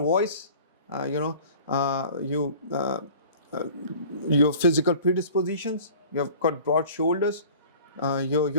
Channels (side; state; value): both; inverted; correlation -0.44